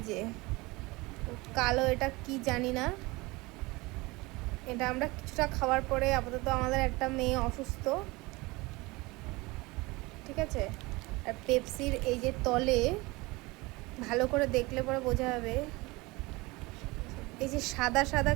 যে কালো, এটা কি জানি না। এটা আমরা কিছুটা খাওয়ার পরে, আপাতত আমাদের একটা মেয়ে অসুস্থ, ঠিক আছে। আর পেপসির এই যে তলে ভালো করে দেখলে পরে বোঝা যাবে, এই যে সাদা সাদা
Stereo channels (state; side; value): quieter; left; 23.1 dB